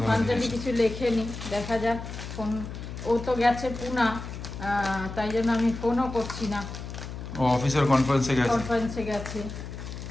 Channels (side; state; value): left; noise; hum, 9 dB below the sound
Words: পাঞ্চালি জিনিস। কিছু লেখেনি, দেখা যাক। ফোন, ও তো গেছে পুনা, তাই জন্য আমি ফোনও করছি না, ও অফিসের কনফারেন্সে গেছে। কনফারেন্সে গেছে।